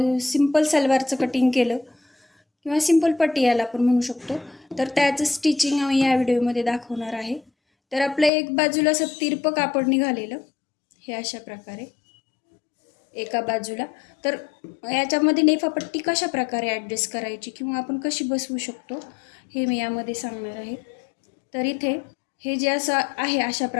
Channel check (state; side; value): drops out; right; at 8.3 s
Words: सिंपल सलवारचं कटिंग केलं किंवा सिंपल पट्टी याला आपण म्हणू शकतो, तर त्याचं स्टिचिंग आम्ही या व्हिडिओमध्ये दाखवणार आहे. तर आपल्या एक बाजूला असं तिरपं कापड निघालेलं, हे अशा प्रकारे एका बाजूला. तर याच्यामध्ये नेफापट्टी कशा प्रकारे ॲडजस्ट करायची किंवा आपण कशी बसवू शकतो हे मी यामध्ये सांगणार आहे. तर इथे हे जे असं आहे अशा